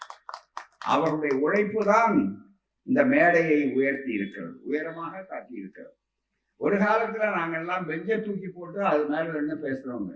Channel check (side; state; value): both; identical; correlation 1.00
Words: அவருடைய உழைப்பு தான் இந்த மேடையை உயர்த்தி இருக்கிறது, உயரமாக காட்டி இருக்கிறது. ஒரு காலத்துல நாங்கெல்லாம் பெஞ்சை தூக்கி போட்டு அது மேல என்ன பேசுறவங்க.